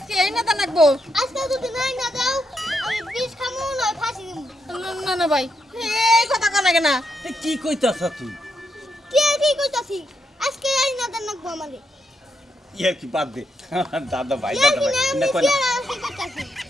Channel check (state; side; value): normal; both; correlation 0.81